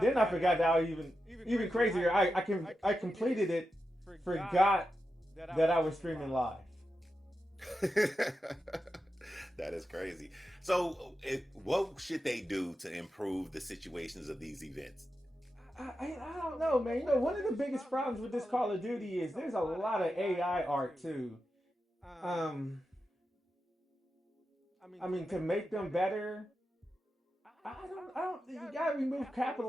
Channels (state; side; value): normal; both; correlation 0.89